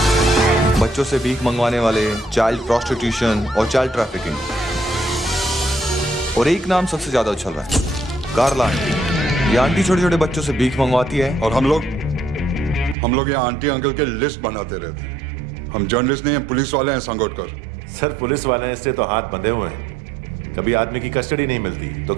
बच्चों से भीख मंगवाने वाले, चाइल्ड प्रोस्टिट्यूशन और चाइल्ड ट्रैफिकिंग। और एक नाम सबसे ज्यादा उछल रहा है, कार्ला आंटी। ये आंटी छोटे छोटे बच्चों से भीख मंगवाती है। और हम लोग यहाँ आंटी अंकल के लिस्ट बनाते रहते हैं। हम जर्नलिस्ट नहीं हैं, पुलिस वाले हैं संगोटकर। सर, पुलिस वाले इससे तो हाथ बंधे हुए हैं। कभी आदमी की कस्टडी नहीं मिलती तो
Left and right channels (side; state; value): left; drops out; at 13.0 s